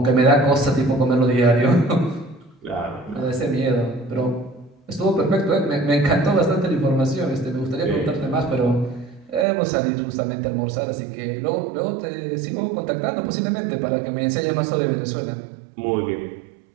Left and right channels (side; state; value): left; drops out; at 9.5 s